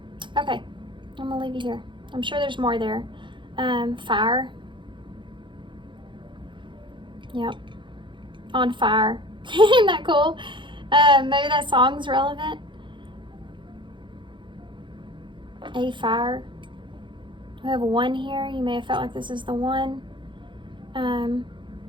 Okay, I'm gonna leave you here. I'm sure there's more there. Fire. Yep. On fire. Isn't that cool? Maybe that song's relevant. A fire. We have one here. You may have felt like this is the one.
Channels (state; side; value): late; left; 0.23 ms